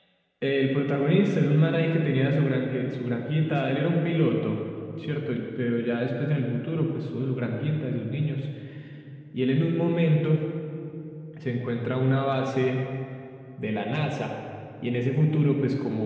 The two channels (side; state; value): both; identical; correlation 1.00